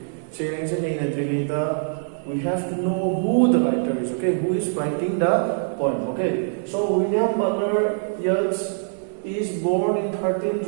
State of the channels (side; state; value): left; silent; digital silence